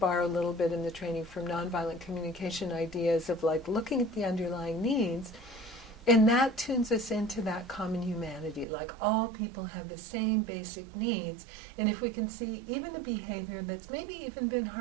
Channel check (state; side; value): drops out; left; at 8.7 s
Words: a little bit in the training from nonviolent communication ideas of like looking at the underlying needs. And that tunes us into that common humanity, like all people have the same basic needs. And if we can see even a behavior that's maybe even been